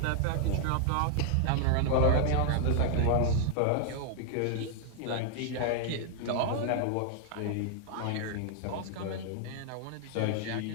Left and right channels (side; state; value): both; different; correlation 0.00